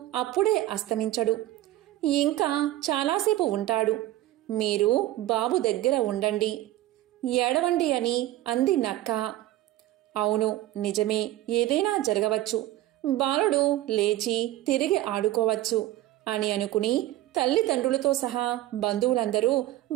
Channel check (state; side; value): quieter; left; 15.2 dB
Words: అప్పుడే అస్తమించడు, ఇంకా చాలాసేపు ఉంటాడు. మీరు బాబు దగ్గర ఉండండి, ఏడవండి అని అంది నక్క. అవును, నిజమే, ఏదైనా జరగవచ్చు. బాలుడు లేచి తిరిగి ఆడుకోవచ్చు అని అనుకుని తల్లిదండ్రులతో సహా బంధువులందరూ